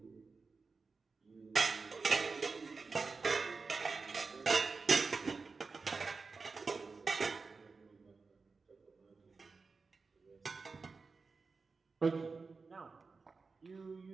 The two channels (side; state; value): left; quieter; 4.4 dB